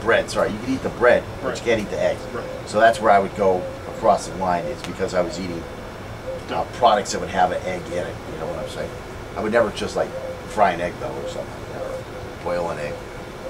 sorry, you could eat the bread, but Right. you can't eat the eggs. Right. So that's where I would go across the line, is because I was eating products that would have an egg in it, you know what I'm saying? I would never just like fry an egg though, or something, or boil an egg.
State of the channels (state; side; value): identical; both; correlation 1.00